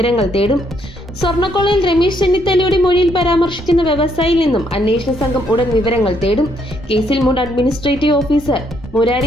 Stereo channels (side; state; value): both; normal; correlation 0.72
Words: തേടും. സ്വർണ്ണക്കൊള്ളയിൽ രമേശ് ചെന്നിത്തലയുടെ മൊഴിയിൽ പരാമർശിക്കുന്ന വ്യവസായിയിൽ നിന്നും അന്വേഷണ സംഘം ഉടൻ വിവരങ്ങൾ തേടും. കേസിൽ മുൻ അഡ്മിനിസ്ട്രേറ്റീവ് ഓഫീസർ